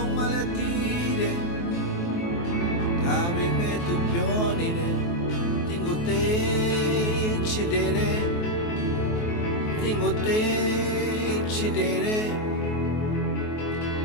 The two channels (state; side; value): late; right; 23 ms